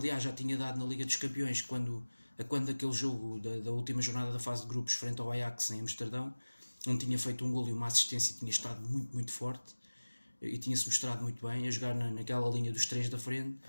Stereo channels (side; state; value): both; inverted; correlation -1.00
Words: já tinha dado na Liga dos Campeões quando aquele jogo da última jornada da fase de grupos frente ao Ajax em Amsterdão, onde tinha feito um golo e uma assistência e tinha estado muito forte e tinha-se mostrado muito bem a jogar naquela linha dos três da frente.